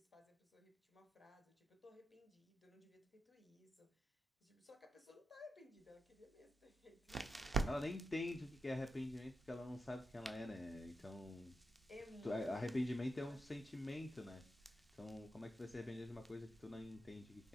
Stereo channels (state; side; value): normal; both; correlation 0.88